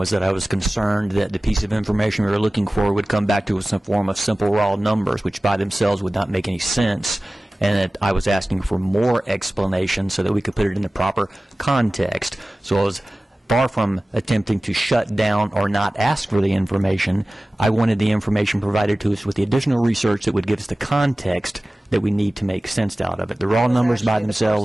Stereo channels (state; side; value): normal; both; correlation 0.97